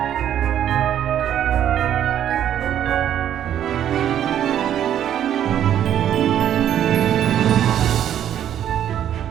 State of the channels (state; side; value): quieter; left; 10.4 dB